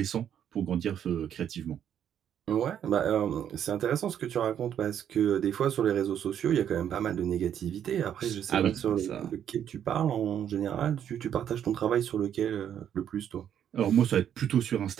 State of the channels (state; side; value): quieter; left; 9.5 dB